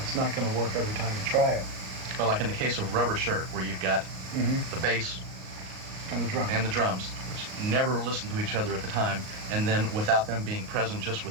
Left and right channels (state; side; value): late; left; 38 ms